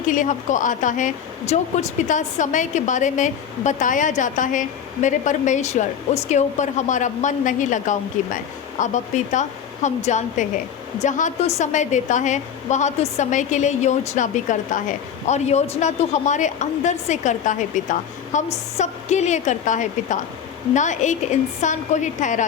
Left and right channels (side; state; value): right; quieter; 8.2 dB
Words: के लिए हमको आता है, जो कुछ पिता समय के बारे में बताया जाता है, मेरे परमेश्वर उसके ऊपर हमारा मन नहीं लगाऊंगी मैं। अब पिता, हम जानते हैं जहाँ तू समय देता है वहाँ तू समय के लिए योजना भी करता है, और योजना तू हमारे अंदर से करता है पिता। हम सब के लिए करता है पिता, ना एक इंसान को ही ठहरा